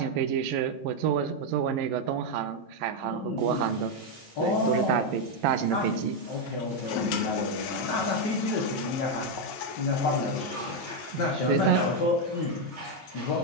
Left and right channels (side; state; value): both; normal; correlation 0.03